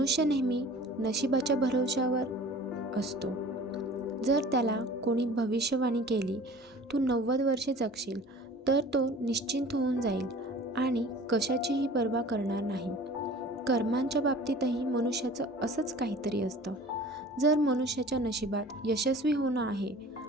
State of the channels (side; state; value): both; normal; correlation 0.44